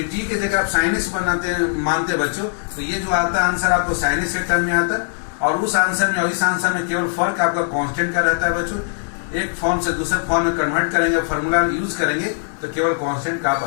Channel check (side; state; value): right; silent; digital silence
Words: टी के जगह आप sin x बनाते मानते बच्चों, तो ये जो आता है आंसर आपको sin x के टर्म में आता है, और उस आंसर में और इस आंसर में केवल फर्क आपका कांस्टेंट का रहता है बच्चों। एक फॉर्म से दूसरे फॉर्म में कन्वर्ट करेंगे, फॉर्मूला यूज करेंगे, तो केवल कांस्टेंट का आप